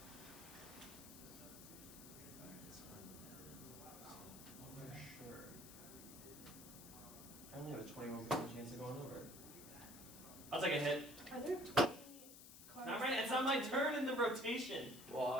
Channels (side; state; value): left; noise; hiss, 15 dB below the sound